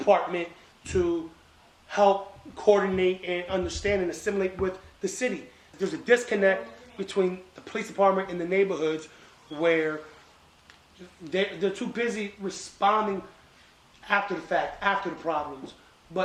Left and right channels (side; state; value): both; identical; correlation 1.00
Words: to help coordinate and understand and assimilate with the city. There's a disconnect between the police department and the neighborhoods where they're too busy responding after the fact, after the problems.